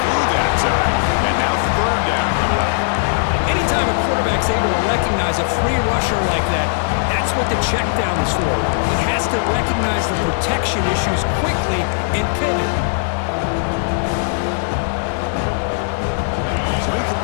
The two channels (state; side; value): silent; right; 63 dB below the other